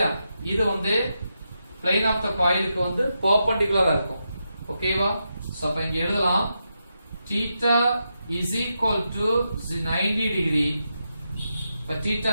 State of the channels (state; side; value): inverted; both; correlation -0.86